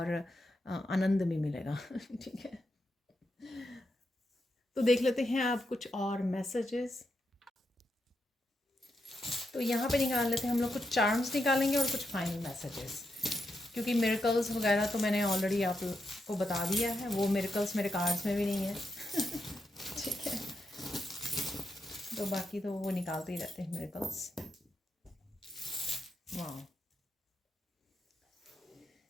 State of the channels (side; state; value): both; normal; correlation 0.84